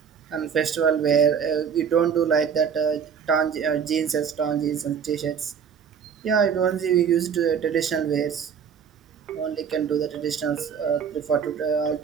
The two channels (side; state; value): left; quieter; 7.2 dB